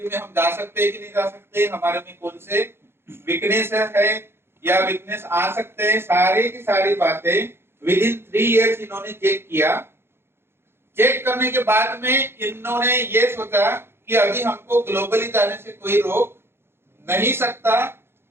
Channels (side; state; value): left; late; 0.11 ms